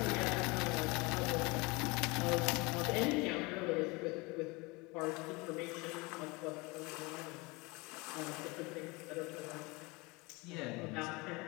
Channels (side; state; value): right; quieter; 25.7 dB